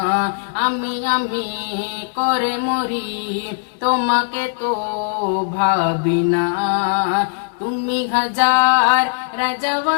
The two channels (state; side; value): silent; right; 63 dB below the other